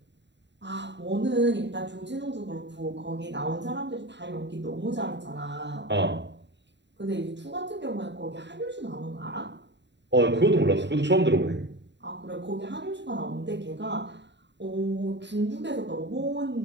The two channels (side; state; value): left; late; 0.52 ms